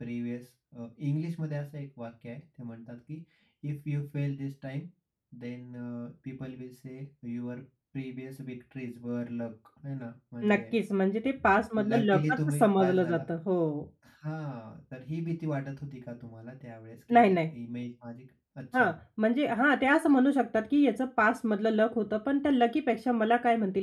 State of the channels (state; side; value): identical; both; correlation 1.00